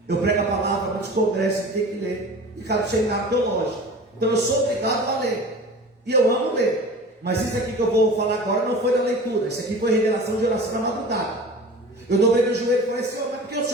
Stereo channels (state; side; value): normal; both; correlation 0.38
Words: Eu prego a palavra, muitos congressos tem que ler, e cada seminário teológico. Então eu sou obrigado a ler, e eu amo ler. Mas isso aqui que eu vou falar agora não foi da leitura, isso aqui foi revelação de oração na madrugada. Eu dobrei meu joelho e falei, Senhor, mas por que o